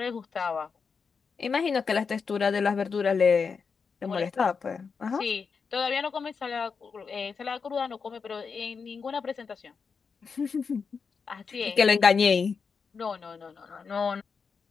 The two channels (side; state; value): right; quieter; 5.5 dB